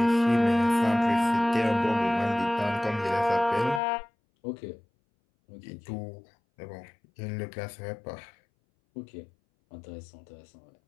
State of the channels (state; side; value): drops out; right; at 3.8 s